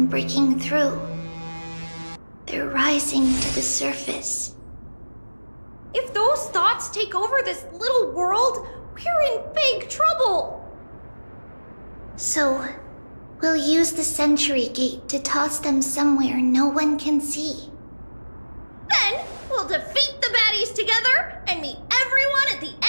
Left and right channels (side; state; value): both; inverted; correlation -1.00